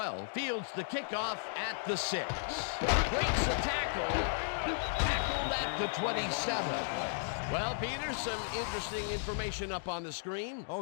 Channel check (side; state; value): right; silent; digital silence